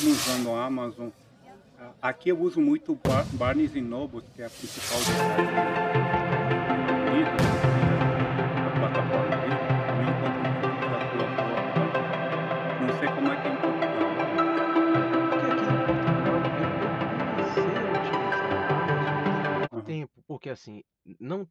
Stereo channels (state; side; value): identical; both; correlation 1.00